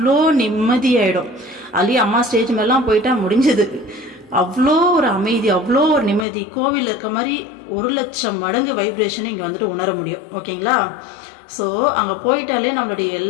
நிம்மதியாயிடும். அதுலயே அம்மா ஸ்டேஜ் மேலாம் போயிட்டா முடிஞ்சது. அவ்வளோ ஒரு அமைதி, அவ்வளோ ஒரு நிம்மதி, கோவிலில் இருக்க மாதிரி 1 லட்சம் மடங்கு வைப்ரேஷனை இங்கே வந்துட்டு உணர முடியும். ஓகேங்களா. ஸோ அங்கே போயிட்டாலே நம்மளுடைய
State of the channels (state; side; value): drops out; right; at 6.2 s